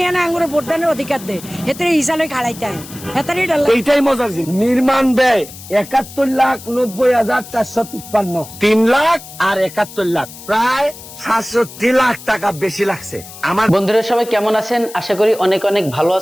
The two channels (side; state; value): left; noise; hiss, 16 dB below the sound